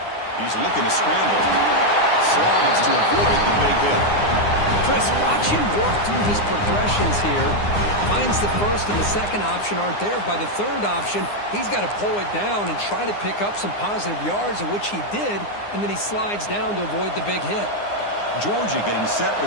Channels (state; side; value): late; right; 9.7 ms